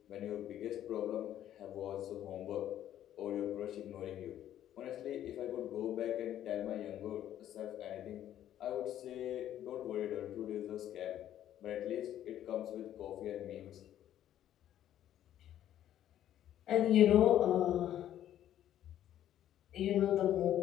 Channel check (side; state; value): right; quieter; 11.5 dB